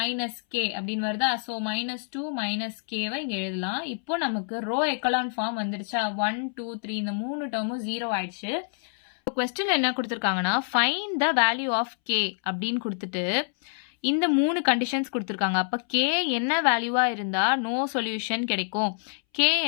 - k அப்படின்னு வருதா? சோ -2 - k வை இங்க எழுதலாம். இப்போ நமக்கு ரோ எக்கலான் ஃபார்ம் வந்துருச்சா? 1 2 3 இந்த மூணு டேர்மும் 0 ஆயிடுச்சு. கொஸ்டின்ல என்ன கொடுத்துருக்காங்கன்னா find the value of K அப்படின்னு கொடுத்துட்டு இந்த மூணு கண்டிஷன்ஸ் கொடுத்துருக்காங்க. அப்போ கே என்ன வேல்யூவா இருந்தா நோ சொல்யூஷன் கிடைக்கும், கே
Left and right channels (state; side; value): silent; right; 60 dB below the other